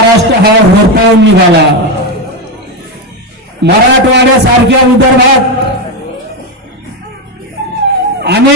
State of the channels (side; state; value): both; normal; correlation 0.10